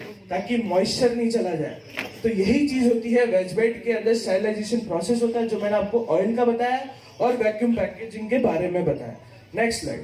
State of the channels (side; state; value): both; identical; correlation 1.00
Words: ताकि मॉइस्चर नहीं चला जाए। तो यही चीज होती है वेज बेड के अंदर, स्टेरिलाइजेशन प्रोसेस होता है जो मैंने आपको ऑयल का बताया और वैक्यूम पैकेजिंग के बारे में बताया। Next